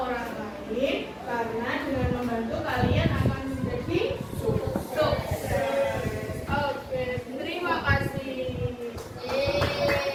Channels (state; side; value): identical; both; correlation 1.00